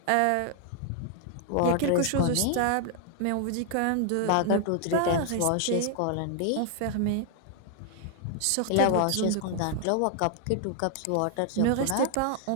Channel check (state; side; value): different; both; correlation 0.00